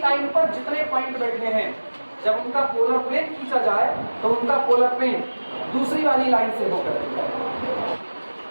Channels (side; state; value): both; inverted; correlation -1.00